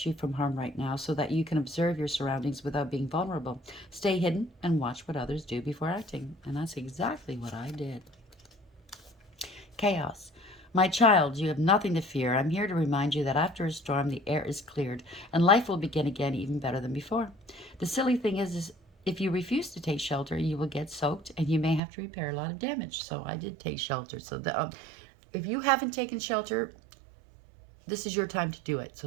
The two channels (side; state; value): left; drops out; at 21.8 s